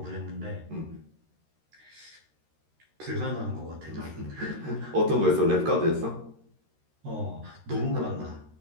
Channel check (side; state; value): left; late; 13 ms